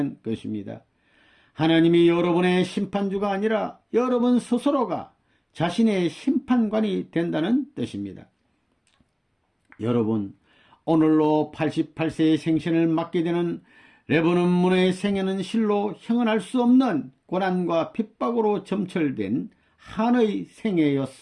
것입니다. 하나님이 여러분의 심판주가 아니라 여러분 스스로가 자신의 심판관이 된다는 뜻입니다. 여러분, 오늘로 88세의 생신을 맞게 되는 레버넌 문의 생애는 실로 형언할 수 없는 고난과 핍박으로 점철된 한의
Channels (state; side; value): identical; both; correlation 1.00